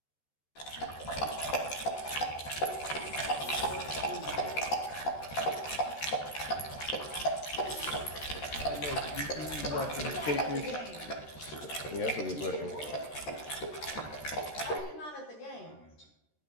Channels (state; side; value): late; right; 13 ms